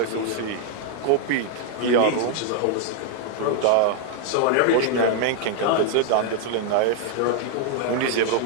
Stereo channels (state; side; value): different; both; correlation 0.00